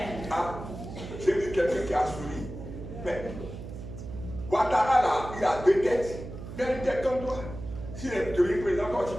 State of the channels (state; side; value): noise; right; hum, 10 dB below the sound